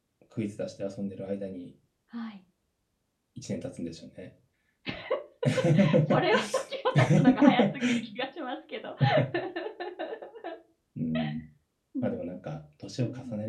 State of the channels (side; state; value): both; identical; correlation 1.00